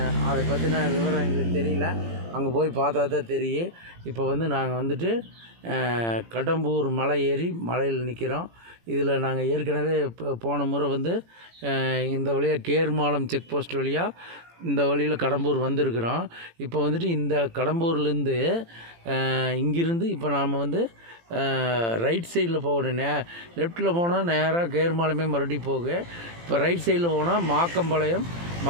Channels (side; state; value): left; late; 18 ms